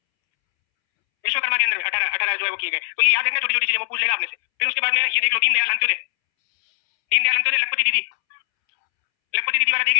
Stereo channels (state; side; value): silent; right; 65 dB below the other